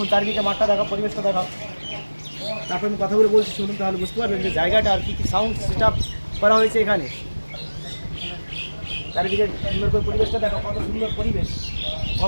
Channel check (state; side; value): inverted; both; correlation -1.00